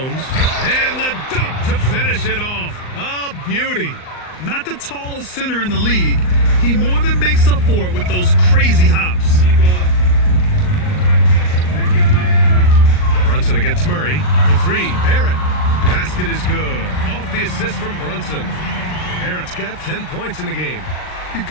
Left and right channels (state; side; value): late; right; 39 ms